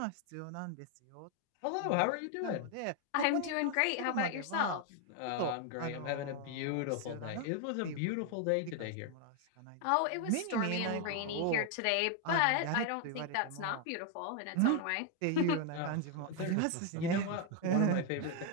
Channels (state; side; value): different; both; correlation 0.01